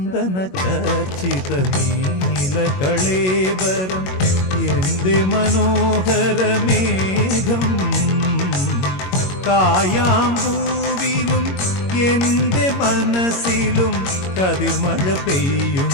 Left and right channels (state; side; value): late; right; 21 ms